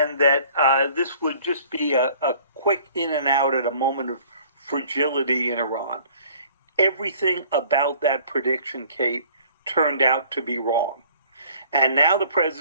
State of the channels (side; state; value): both; inverted; correlation -0.54